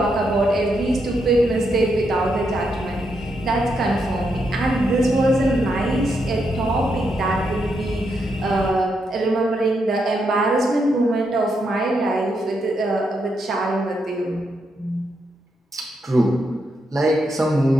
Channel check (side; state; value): both; normal; correlation 0.81